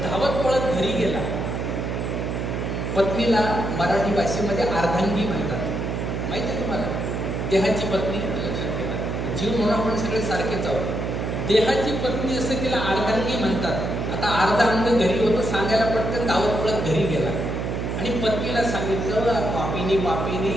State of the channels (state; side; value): noise; right; hum, 2 dB below the sound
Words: धावत पळत घरी गेला. पत्नीला मराठी भाषेमध्ये अर्धांगी म्हणतात, माहिती आहे तुम्हाला? देहाची पत्नी, लक्षात ठेवा. जीव म्हणून आपण सगळे सारखेच आहोत. देहाची पत्नी असं तिला अर्धांगी म्हणतात. आता अर्धा अंग घरी होतं, सांगायला पटकन धावत पळत घरी गेला. आणि पत्नीला सांगितलं, पापिनी पापिनी,